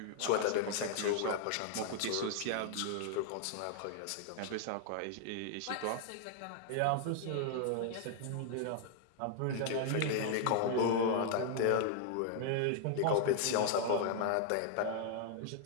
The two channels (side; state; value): both; different; correlation 0.00